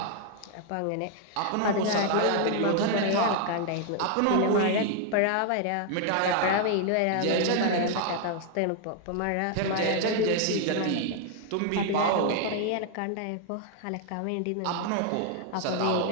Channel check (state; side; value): different; both; correlation 0.00